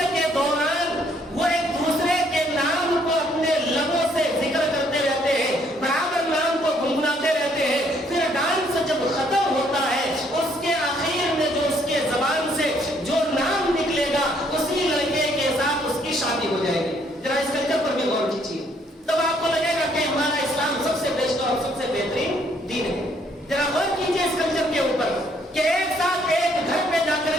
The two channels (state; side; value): normal; both; correlation 0.67